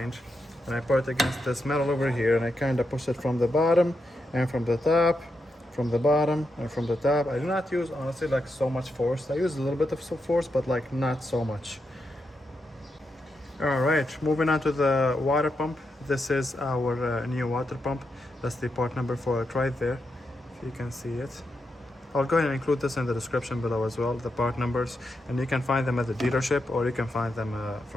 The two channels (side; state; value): both; normal; correlation 0.85